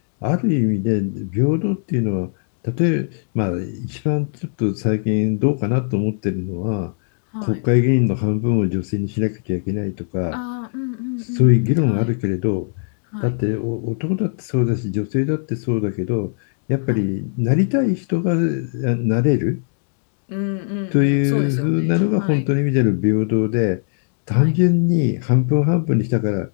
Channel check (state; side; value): silent; right; digital silence